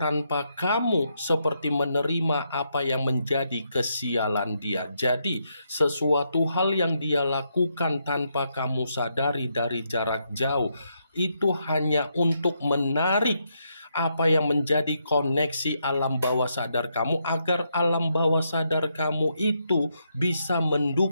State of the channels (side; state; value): both; inverted; correlation -0.79